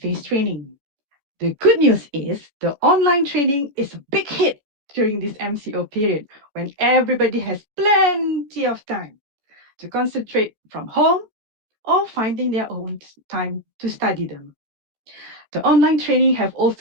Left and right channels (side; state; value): left; late; 14 ms